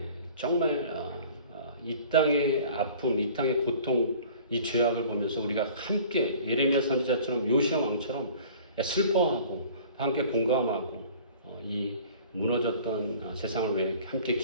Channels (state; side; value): inverted; both; correlation -0.47